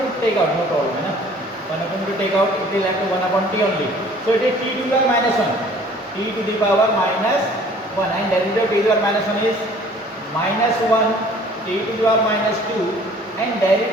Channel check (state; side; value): normal; both; correlation 0.52